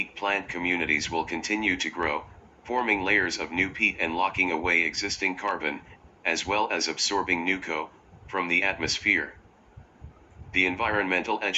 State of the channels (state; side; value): identical; both; correlation 1.00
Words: plant communities will continue to grow, forming layers of new peat and locking away existing carbon, as well as absorbing new CO from the atmosphere. The Environmental